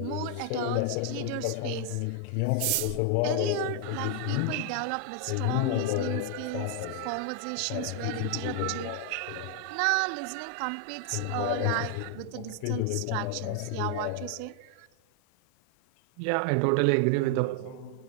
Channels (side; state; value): both; different; correlation 0.00